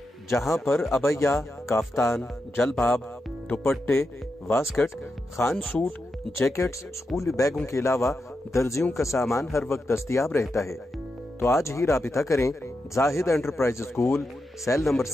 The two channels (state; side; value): normal; both; correlation 0.87